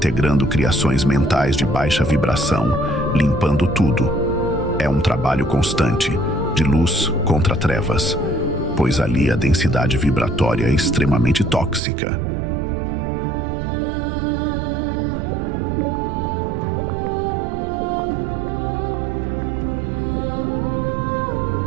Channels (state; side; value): drops out; left; at 11.8 s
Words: criações mentais de baixa vibração, limpando tudo. É um trabalho constante, de luz contra trevas, pois ali a densidade vibratória é extremamente tóxica.